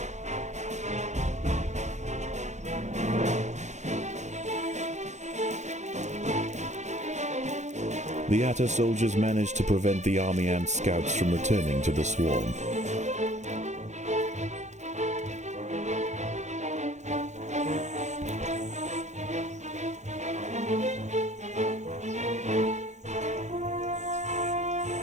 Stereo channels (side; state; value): left; late; 0.34 ms